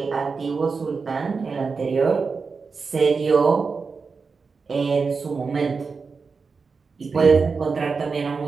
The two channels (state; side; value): quieter; left; 4.8 dB